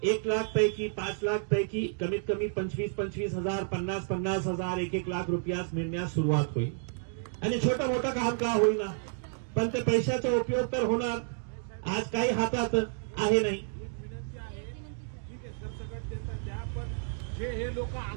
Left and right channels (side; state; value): left; silent; digital silence